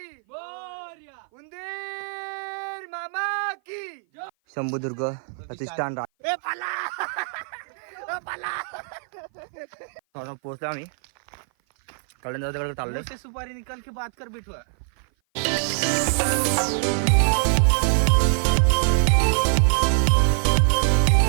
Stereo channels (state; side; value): silent; left; 56 dB below the other